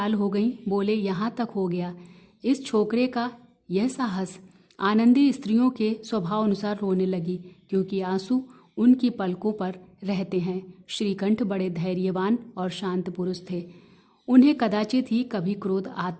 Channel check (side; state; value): both; identical; correlation 1.00